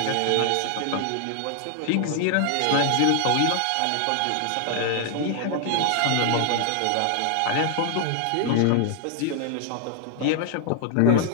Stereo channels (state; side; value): different; both; correlation 0.00